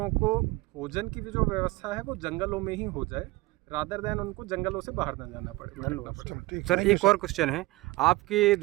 को भोजन की भी जो व्यवस्था है वो जंगलों में ही हो जाए, रादर दैन उनको जंगलों से बाहर न जाना पड़े। धन्यवाद चलो, ठीक सर है। एक और क्वेश्चन है, आपके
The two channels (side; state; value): left; quieter; 20.8 dB